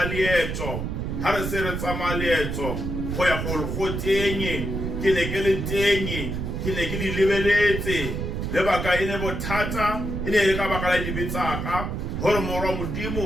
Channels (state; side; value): noise; right; rumble, 3 dB below the sound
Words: leetso ha re se re tsama leetso go ya go tenye ke ne ke le tenye ke ne ke di lebeletse lebaka ene bothata ene le ka baka la dibetsaka hore moro